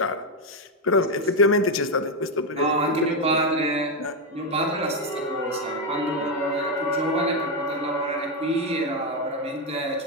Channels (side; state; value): both; normal; correlation 0.06